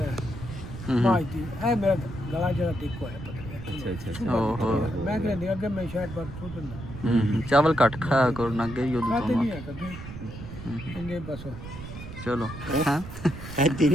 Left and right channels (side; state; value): right; noise; rumble, 11 dB below the sound